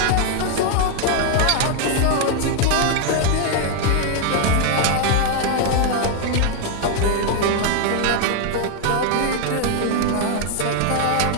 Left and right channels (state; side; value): different; both; correlation 0.00